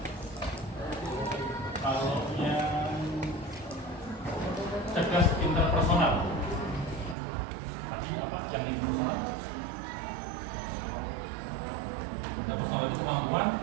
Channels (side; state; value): left; drops out; at 7.2 s